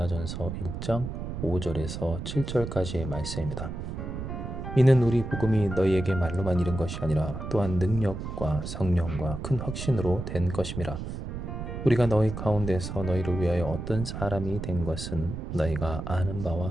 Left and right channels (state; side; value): noise; right; rumble, 6 dB below the sound